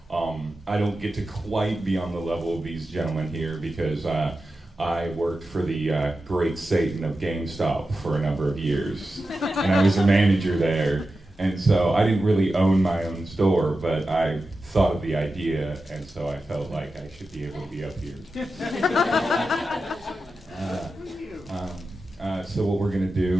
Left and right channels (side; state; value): both; normal; correlation 0.92